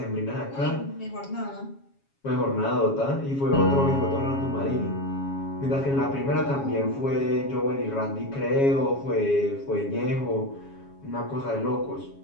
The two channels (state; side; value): late; right; 7.2 ms